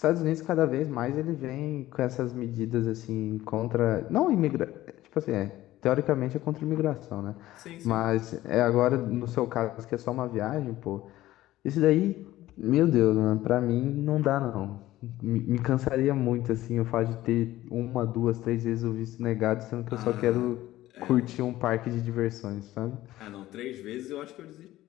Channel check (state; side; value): quieter; right; 15.5 dB